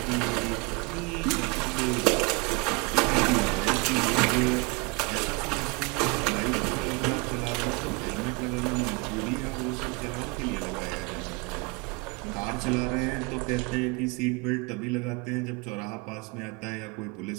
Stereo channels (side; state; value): left; quieter; 27.2 dB